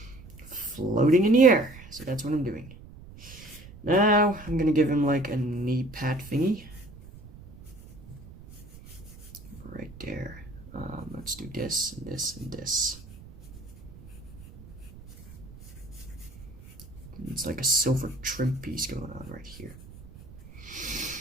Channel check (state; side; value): noise; right; rumble, 18 dB below the sound